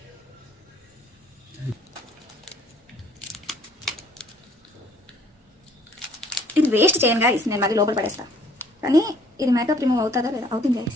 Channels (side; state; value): both; normal; correlation 0.60